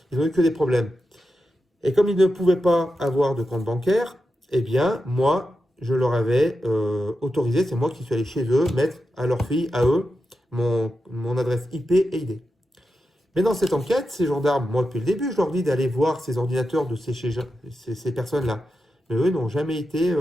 ils n'ont eu que des problèmes. Et comme ils ne pouvaient pas avoir de compte bancaire, eh bien, moi, je leur avais autorisé, c'est moi qui suis allé chez eux, mettre à leur fille, à eux, mon adresse IP et ID. Mais dans cette enquête, ces gendarmes, moi depuis le début, je leur dis d'aller voir ces ordinateurs de ces personnes-là. Mais eux n'ont jamais été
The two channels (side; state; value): both; normal; correlation 0.89